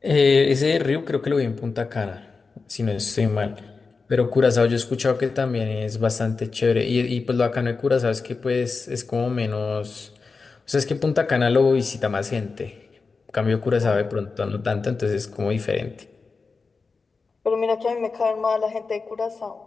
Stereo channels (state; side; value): quieter; right; 4.5 dB